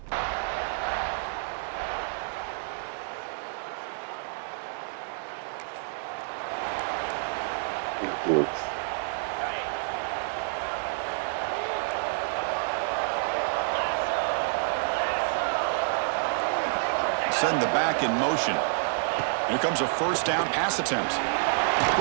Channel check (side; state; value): left; silent; 59 dB below the other